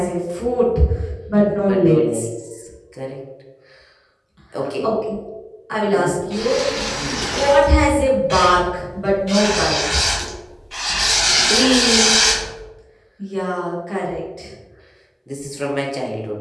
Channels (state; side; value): identical; both; correlation 1.00